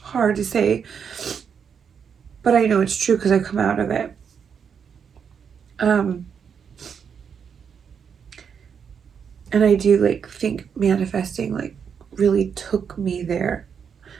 hard to say, but I know it's true because I've come out of it. And I do like think manifesting like really took me there.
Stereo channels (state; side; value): quieter; left; 7.0 dB